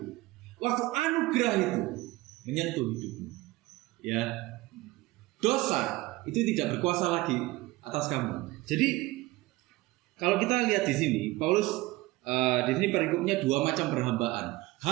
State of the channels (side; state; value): left; quieter; 19.7 dB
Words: waktu anugerah itu menyentuh hidupmu, ya, dosa itu tidak berkuasa lagi atas kamu. Jadi kalau kita lihat di sini, Paulus di sini perikopnya dua macam perhambaan.